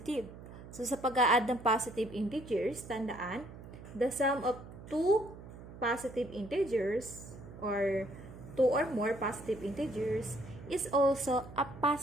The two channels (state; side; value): noise; right; hum, 15 dB below the sound